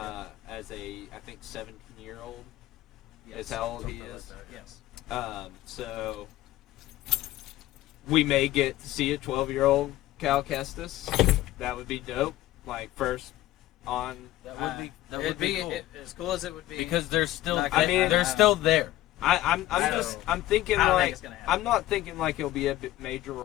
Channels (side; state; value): right; quieter; 15.2 dB